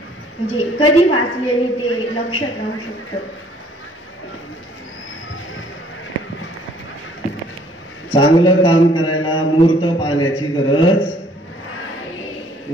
म्हणजे कधी वाचल्याने ते लक्षात राहू शकतं? चांगलं काम करायला मुहूर्त पाहण्याची गरज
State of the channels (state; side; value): normal; both; correlation 0.60